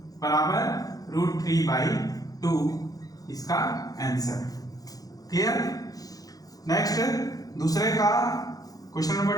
बराबर √3/2 इसका आंसर। क्लियर। नेक्स्ट दूसरे का क्वेश्चन नंबर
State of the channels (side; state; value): right; late; 0.18 ms